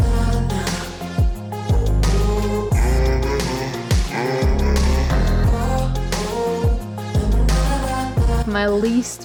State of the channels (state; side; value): identical; both; correlation 1.00